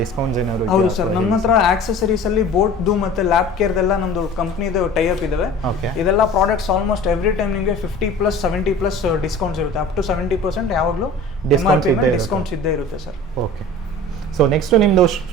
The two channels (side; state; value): both; normal; correlation 0.41